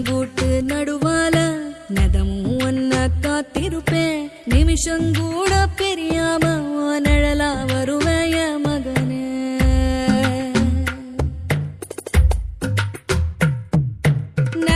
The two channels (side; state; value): both; identical; correlation 1.00